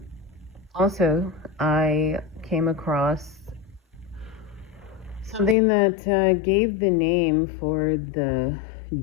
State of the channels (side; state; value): right; drops out; at 5.6 s